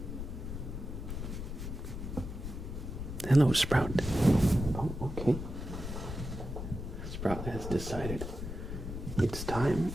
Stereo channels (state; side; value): noise; left; rumble, 6 dB below the sound